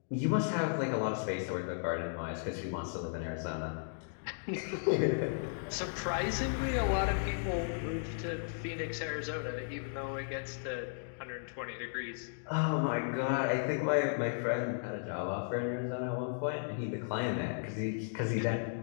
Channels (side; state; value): right; silent; digital silence